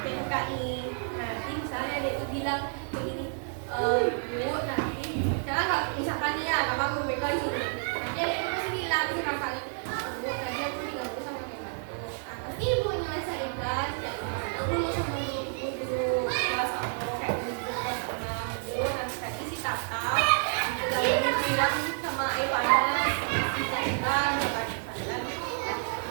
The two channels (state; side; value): silent; left; 58 dB below the other